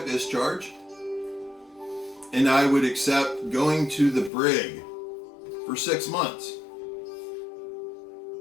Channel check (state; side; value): drops out; right; at 4.3 s